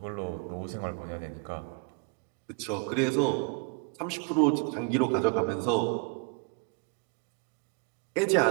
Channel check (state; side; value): quieter; left; 34.1 dB